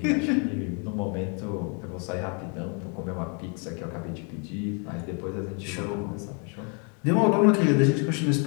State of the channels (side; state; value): right; quieter; 37.4 dB